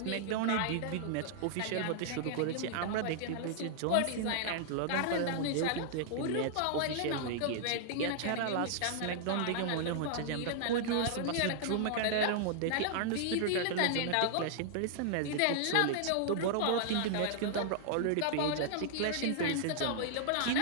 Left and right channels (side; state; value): both; different; correlation -0.01